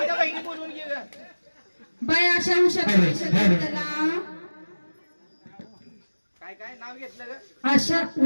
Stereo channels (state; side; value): inverted; both; correlation -1.00